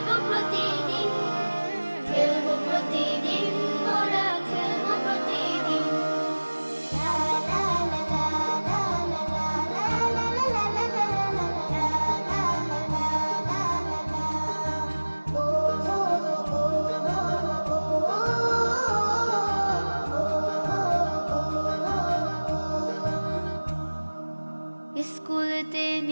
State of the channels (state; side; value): inverted; both; correlation -1.00